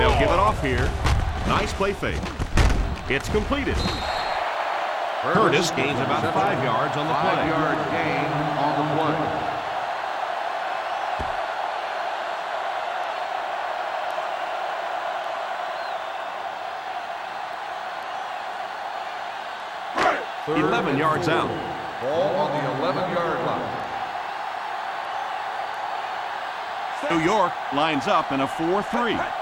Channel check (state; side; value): identical; both; correlation 1.00